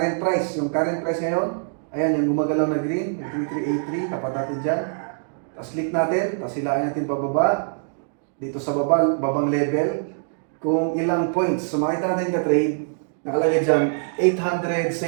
price. Yung current price ngayon, ayan, yung gumagalaw na green, yung 3383, tapat natin dyan. Tapos click natin, tapos hilain natin pababa. Dito sa babang level, kung ilang points. So makita natin ka-trade, nakalagay dyan,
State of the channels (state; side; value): silent; left; digital silence